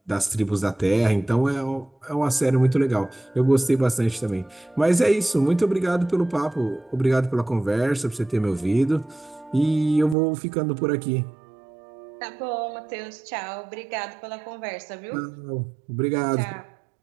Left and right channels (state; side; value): drops out; left; at 10.2 s